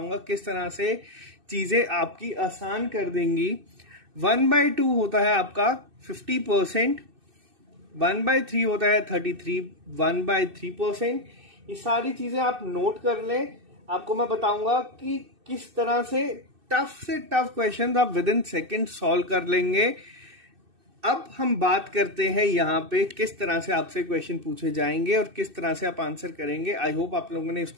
किस तरह से चीजें आपकी आसान कर देंगी। 1/2 होता है आपका 50%, 1/3 होता है 33, 1/3%। ये सारी चीजें आप नोट कर लें। आपको मैं बताऊंगा कि किस तरह से टफ क्वेश्चन आप विद इन सेकेंड सॉल्व कर लेंगे। अब हम बात करते हैं यहाँ पे किस तरह से आपसे क्वेश्चन पूछे जाएंगे और किस तरह से आप आंसर करेंगे। आई होप आप लोगों ने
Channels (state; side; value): late; left; 2.6 ms